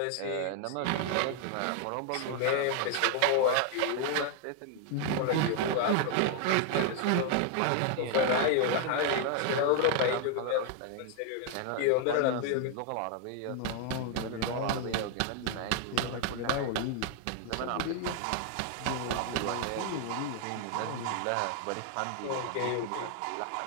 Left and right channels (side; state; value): both; different; correlation 0.00